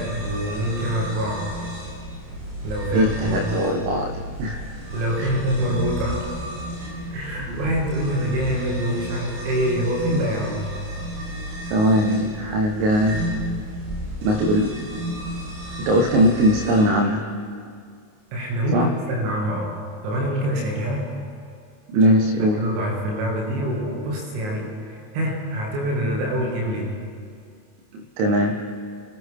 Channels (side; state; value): left; late; 28 ms